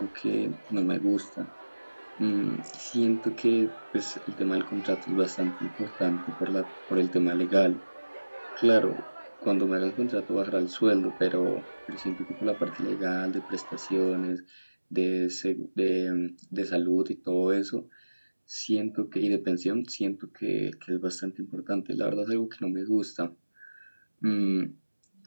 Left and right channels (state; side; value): inverted; both; correlation -1.00